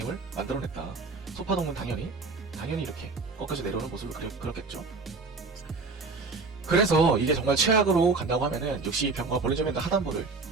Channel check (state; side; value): quieter; left; 4.1 dB